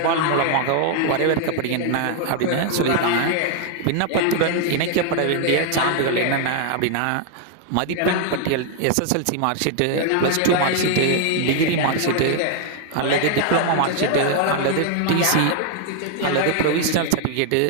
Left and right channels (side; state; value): both; different; correlation 0.00